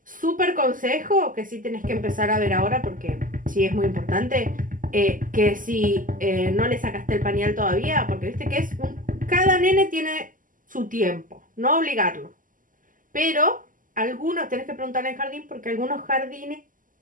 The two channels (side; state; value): left; late; 0.39 ms